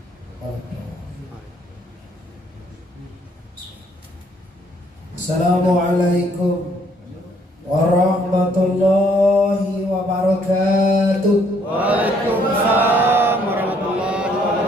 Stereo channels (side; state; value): both; normal; correlation 0.66